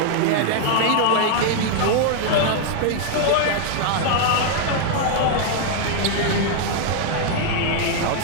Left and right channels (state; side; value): different; both; correlation 0.00